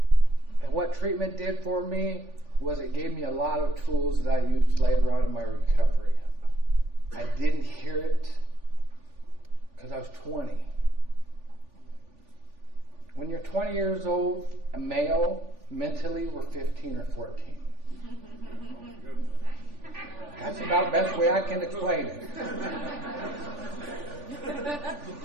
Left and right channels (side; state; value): left; late; 3.4 ms